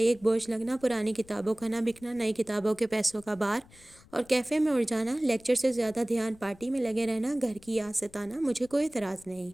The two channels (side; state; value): left; noise; rumble, 25 dB below the sound